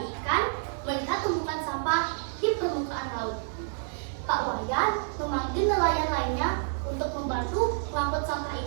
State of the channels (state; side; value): silent; left; 59 dB below the other